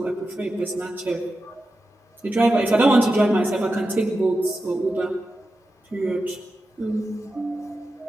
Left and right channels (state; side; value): normal; both; correlation 0.91